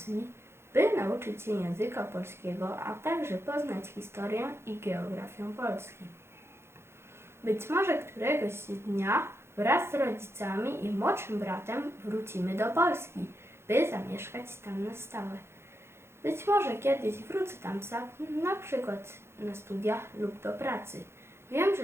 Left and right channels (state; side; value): late; left; 0.12 ms